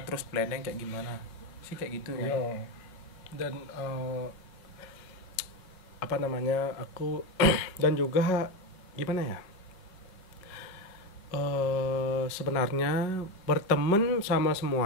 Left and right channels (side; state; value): right; late; 5.3 ms